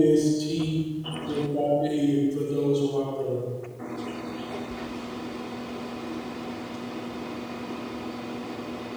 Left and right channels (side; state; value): both; identical; correlation 1.00